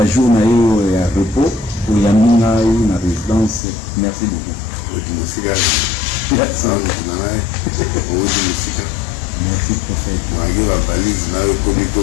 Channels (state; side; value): drops out; right; at 3.6 s